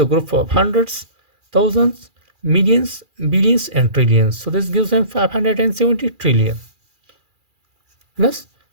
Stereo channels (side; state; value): left; late; 2.4 ms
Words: group of hundreds, thousands, millions, billions, and trillions. So this gives them 570 trillion. Plus,